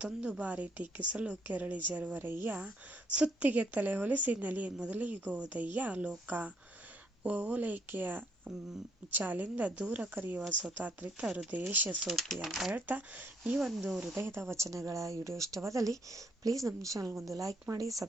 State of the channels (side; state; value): both; normal; correlation 0.70